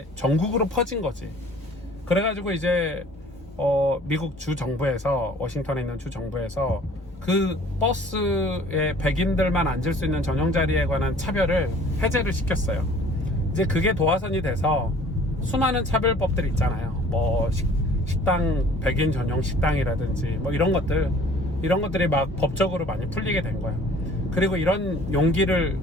전국으로 퍼진 거지. 그래가지고 이제 미국 주 정부에서, 워싱턴에 있는 주 정부에서 그 버스에 백인들만 앉을 수 있는 전용 자리에 관한 차별을 해제를 시켰어요. 이제 그게 도화선이 돼서 수많은 차별법들이 있잖아요. 식당, 백인 전용 식당이라든지 뭐 이런 것들이 막 법적으로 많이 풀리게 된 거예요. 그리고 이런 용기를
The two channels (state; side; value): normal; both; correlation 0.52